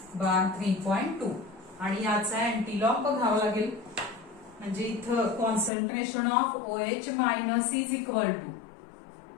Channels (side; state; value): right; drops out; at 5.7 s